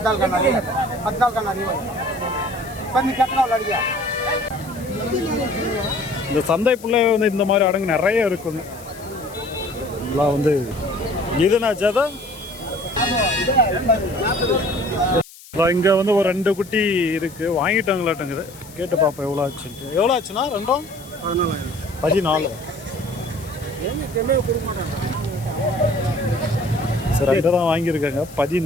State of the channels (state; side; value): noise; left; hiss, 20 dB below the sound